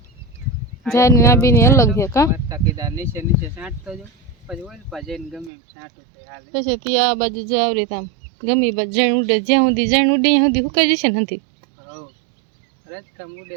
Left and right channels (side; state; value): left; drops out; at 5.5 s